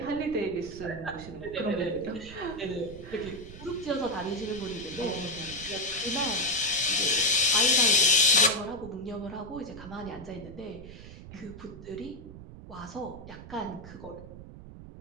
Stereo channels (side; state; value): right; noise; rumble, 14 dB below the sound